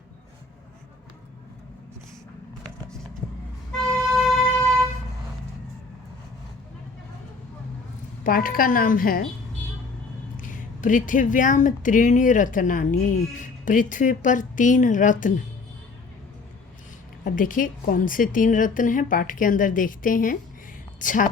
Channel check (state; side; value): quieter; right; 4.1 dB